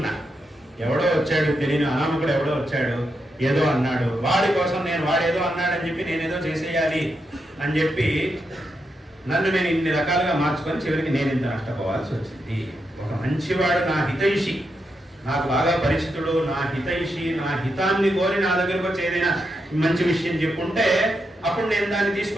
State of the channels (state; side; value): normal; both; correlation 0.84